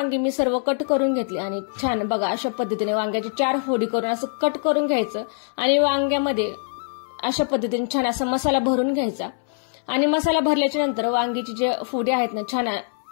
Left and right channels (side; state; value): right; silent; 63 dB below the other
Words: मी सर्व कट करून घेतली आणि छान बघा अशा पद्धतीने वांग्याची 4 फोडी करून असं कट करून घ्यायचं आणि वांग्यामध्ये अशा पद्धतीने छान असा मसाला भरून घ्यायचा. आणि मसाला भरल्याच्या नंतर वांगीची जे फोडी आहेत ना छान